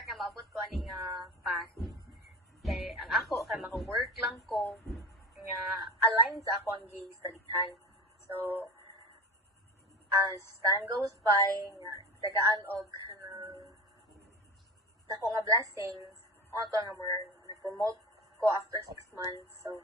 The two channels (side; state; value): both; normal; correlation 0.31